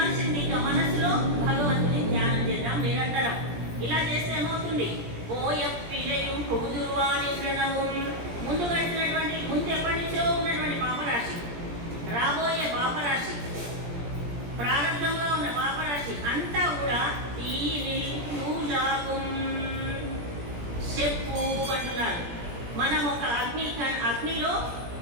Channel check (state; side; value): late; left; 17 ms